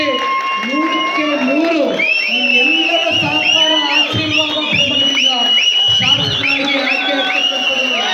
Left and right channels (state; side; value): identical; both; correlation 1.00